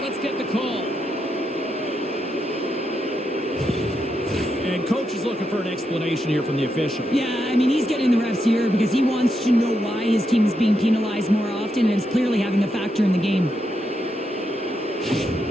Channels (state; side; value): normal; both; correlation 0.83